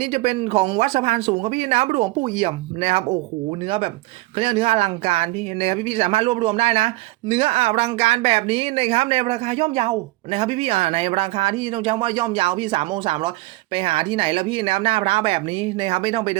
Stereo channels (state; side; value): quieter; left; 20.3 dB